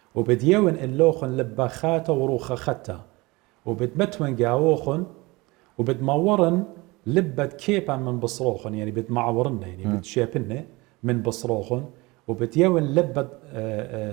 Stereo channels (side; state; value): left; quieter; 23.3 dB